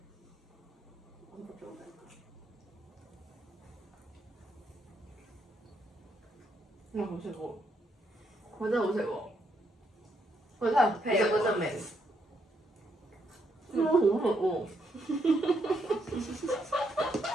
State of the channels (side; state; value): both; normal; correlation 0.76